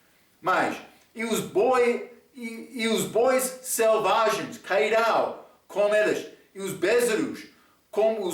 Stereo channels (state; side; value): identical; both; correlation 1.00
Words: Mas, e os bois selvagens cairão com eles, e os bezerros como